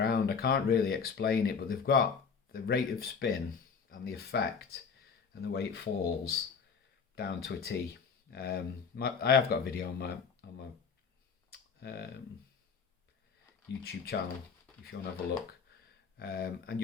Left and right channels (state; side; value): quieter; right; 5.9 dB